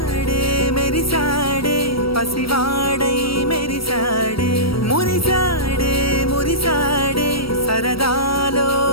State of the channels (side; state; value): right; late; 0.75 ms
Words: మెరిసాడే పసివాడై మెరిసాడే మురిసాడే మురిసాడే సరదాలో